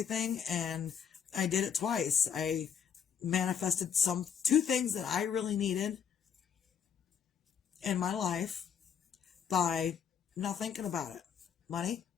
thing, and I did it twice. I manifested 2 things that I really needed in my life by not thinking about it. Money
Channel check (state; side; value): quieter; right; 7.7 dB